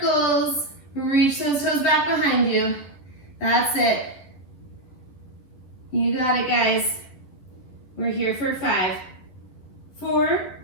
Reach those toes back behind you. That's it. You got it, guys. We're here for 5, 4,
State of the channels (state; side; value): late; right; 11 ms